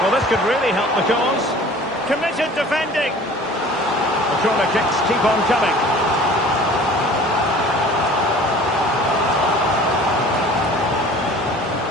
Well, this could really help the cause. Committed defending. The corner kicks keep on coming.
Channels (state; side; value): normal; both; correlation 0.46